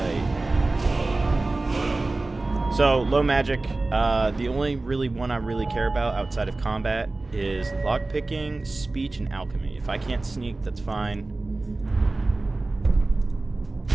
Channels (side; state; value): left; quieter; 3.2 dB